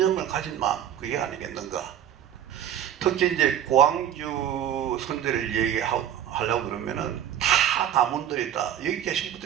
가진 마음, 그게 아니겠는가. 특히 이제 고항주 선대를 얘기하려고 그러면은 다 가문들이 다 여기 계신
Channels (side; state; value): left; quieter; 10.3 dB